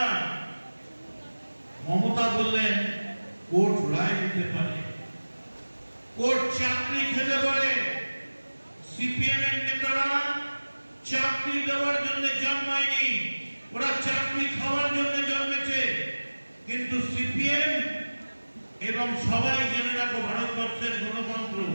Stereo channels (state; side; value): inverted; both; correlation -1.00